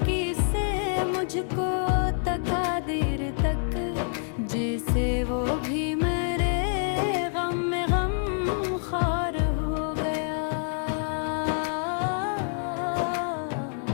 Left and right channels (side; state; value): right; silent; 60 dB below the other